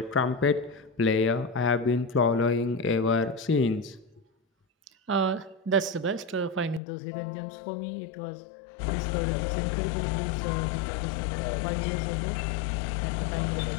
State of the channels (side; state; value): right; drops out; at 6.8 s